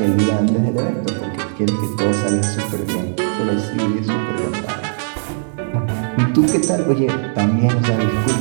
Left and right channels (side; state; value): left; silent; digital silence